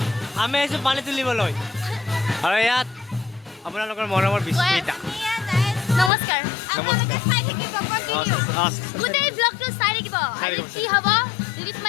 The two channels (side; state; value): right; drops out; at 6.1 s